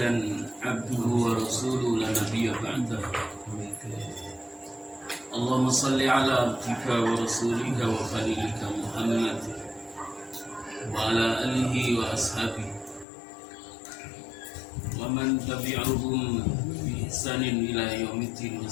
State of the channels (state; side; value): drops out; right; at 13.1 s